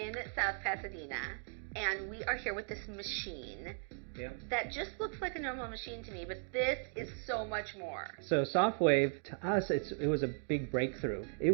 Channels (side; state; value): left; silent; 53 dB below the other